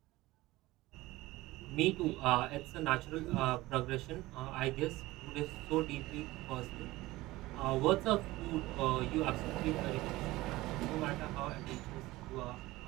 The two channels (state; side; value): quieter; left; 18.8 dB